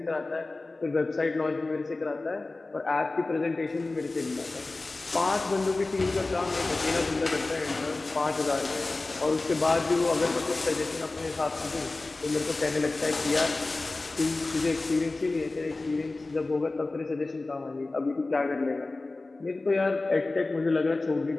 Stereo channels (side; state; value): right; quieter; 3.3 dB